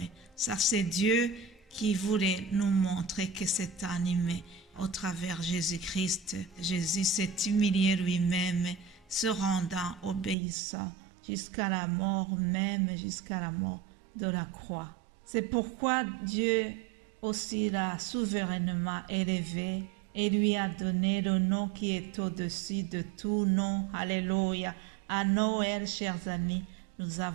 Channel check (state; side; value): drops out; left; at 10.4 s